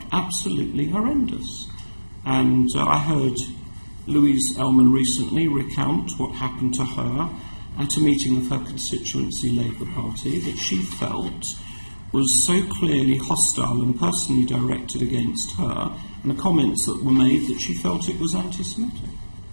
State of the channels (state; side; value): inverted; both; correlation -1.00